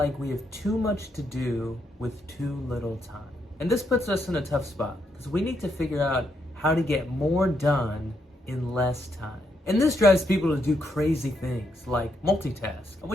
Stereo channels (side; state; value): both; normal; correlation 0.78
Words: we have too much to do with too little time. And this puts us in a tough spot because we need to figure out how to get more done in less time. And this drives people to do crazy things like multitask. And